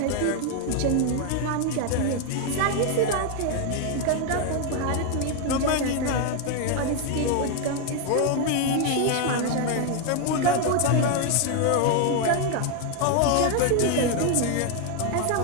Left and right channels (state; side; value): different; both; correlation 0.01